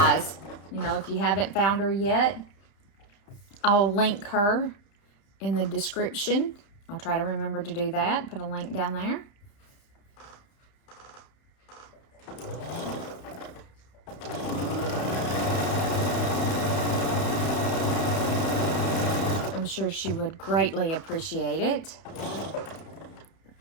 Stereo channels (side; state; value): right; late; 31 ms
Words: You know, if you haven't found her yet, I'll link her in the description. I'll try to remember to do that. Put a link down there. I'm sure she would greatly appreciate it.